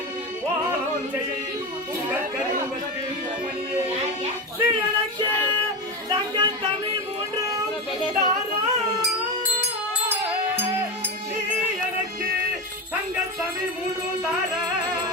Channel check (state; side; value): normal; both; correlation 0.18